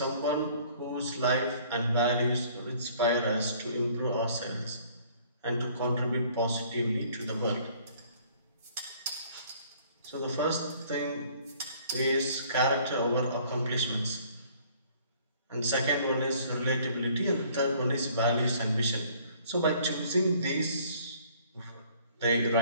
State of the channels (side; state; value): both; inverted; correlation -0.57